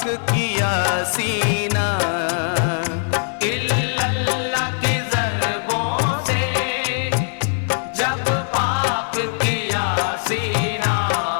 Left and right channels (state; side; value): silent; right; 62 dB below the other